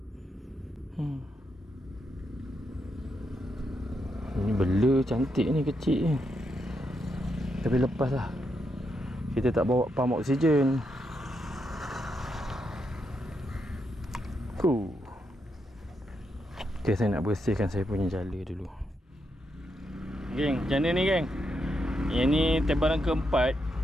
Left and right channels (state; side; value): normal; both; correlation 0.82